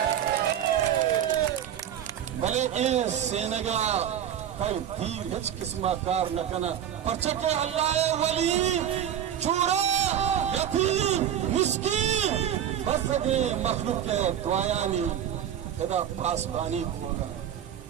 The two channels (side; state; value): left; quieter; 9.9 dB